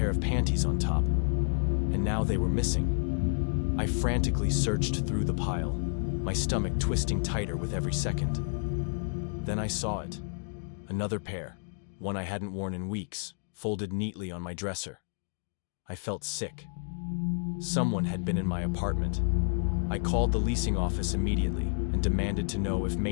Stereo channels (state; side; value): silent; right; digital silence